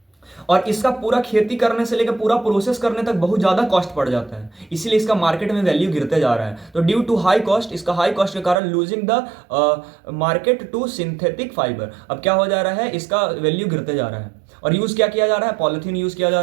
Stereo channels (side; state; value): left; drops out; at 8.6 s